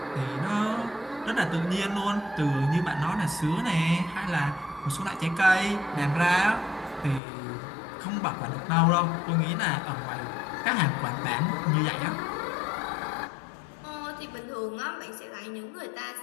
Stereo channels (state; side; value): drops out; right; at 7.2 s